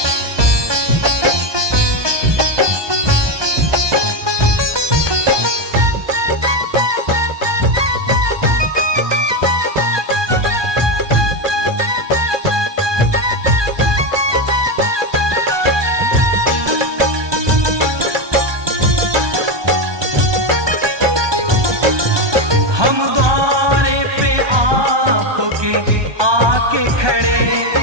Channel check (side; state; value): left; late; 1.2 ms